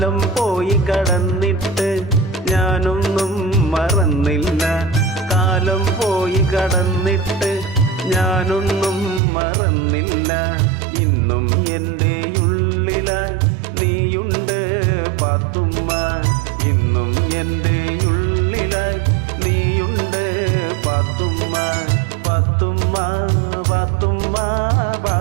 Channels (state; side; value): drops out; left; at 9.2 s